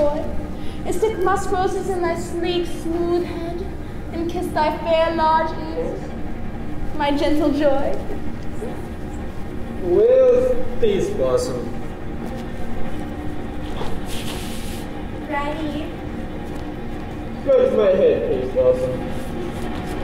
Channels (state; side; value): identical; both; correlation 1.00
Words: and stick musk roses in thy sleek, smooth head, and kiss thy fair large ears, my gentle joy. Where's Peace Blossom? Ready? Scratch my head, Peace Blossom.